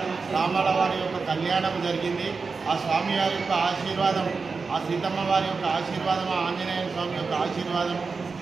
రామాల వారి యొక్క కళ్యాణం జరిగింది. ఆ స్వామివారి యొక్క ఆశీర్వాదం, ఆ సీతమ్మ వారి యొక్క ఆశీర్వాదం, ఆ ఆంజనేయ స్వామి యొక్క ఆశీర్వాదం,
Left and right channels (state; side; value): quieter; left; 4.6 dB